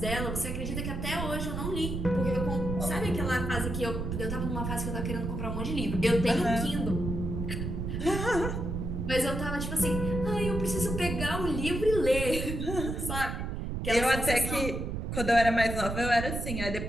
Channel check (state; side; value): noise; right; rumble, 3 dB below the sound